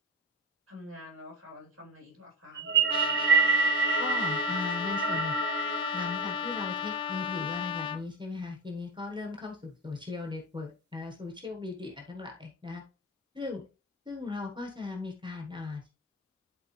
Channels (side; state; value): both; normal; correlation 0.19